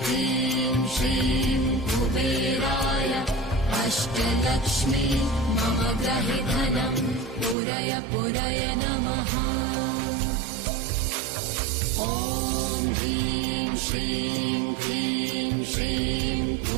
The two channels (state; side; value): drops out; left; at 7.6 s